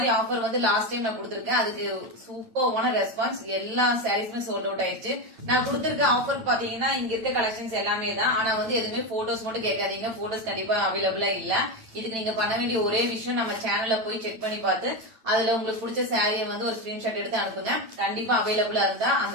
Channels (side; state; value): left; late; 8.9 ms